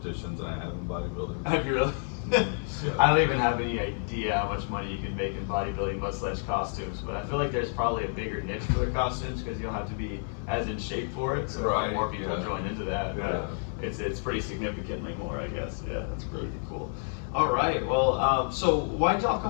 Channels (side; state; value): right; silent; 58 dB below the other